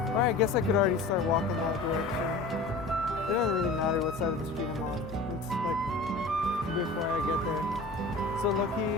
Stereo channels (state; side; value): quieter; right; 3.2 dB